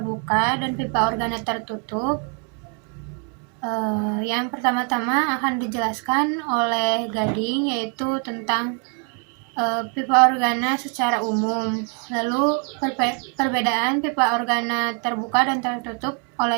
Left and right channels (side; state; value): left; quieter; 35.9 dB